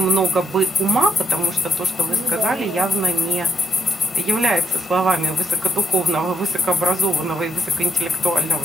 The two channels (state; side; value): normal; both; correlation 0.75